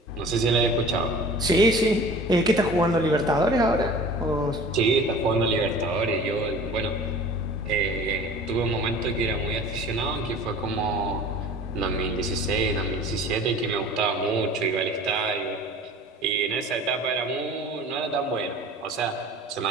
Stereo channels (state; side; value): normal; both; correlation 0.42